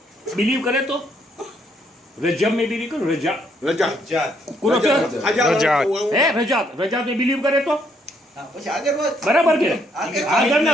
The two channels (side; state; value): both; normal; correlation 0.71